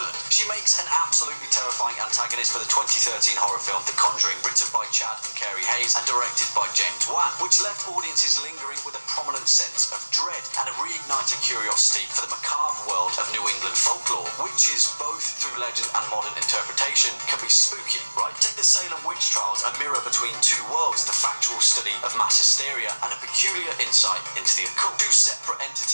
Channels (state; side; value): inverted; both; correlation -1.00